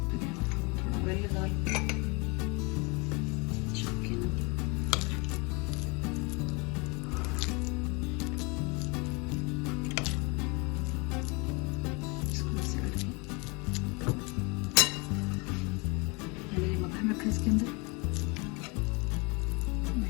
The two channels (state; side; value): quieter; right; 29.1 dB